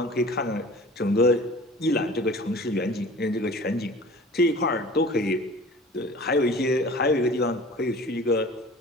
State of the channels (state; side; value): normal; both; correlation 0.42